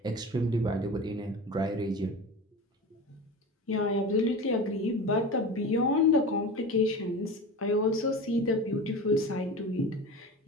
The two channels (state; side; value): normal; both; correlation 0.31